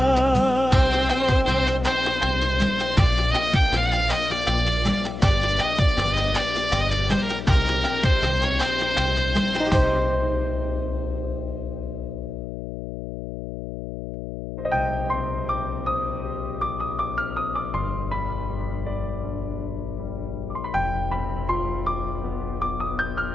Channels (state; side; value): noise; left; hum, 7 dB below the sound